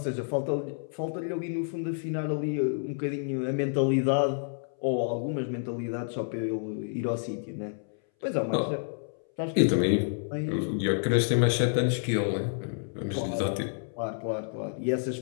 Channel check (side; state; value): right; silent; 59 dB below the other